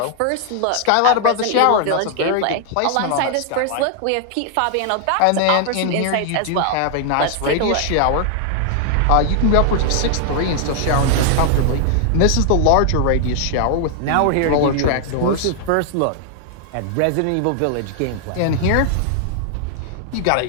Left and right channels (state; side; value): different; both; correlation 0.00